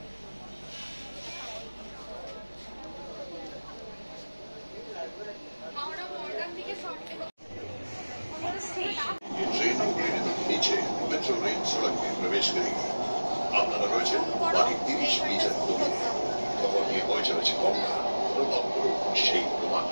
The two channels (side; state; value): both; inverted; correlation -1.00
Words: नीचे मेट्रो रेल सड़क में प्रवेश करेगी। আপনারা রয়েছেন বাকি 30 মিটার দূরে। খবর নিয়ে বয়ে চলেছে গঙ্গা, অনুভব করুন সেই